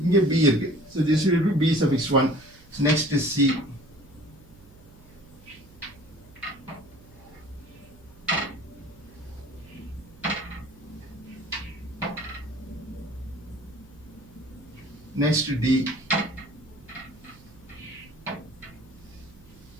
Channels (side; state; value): right; noise; hum, 24 dB below the sound